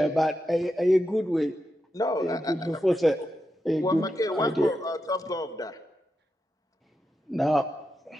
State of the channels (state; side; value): normal; both; correlation 0.87